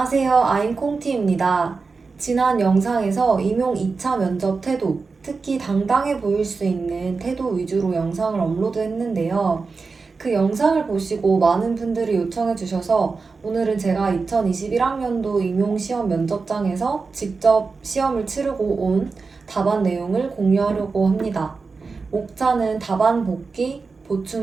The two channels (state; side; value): quieter; left; 4.4 dB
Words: 아임 콩티입니다. 지난 영상에서 임용 2차 면접 태도, 특히 당당해 보일 수 있는 태도 위주로 영상을 업로드했는데요. 그 영상을 보시고 많은 분들이 요청해 주셔서 오늘은 제가 2021학년도 임용 시험 면접장에서 직접 시험을 치르고 온 답안 내용을 공유하려고 합니다. 목차는 답안 복기,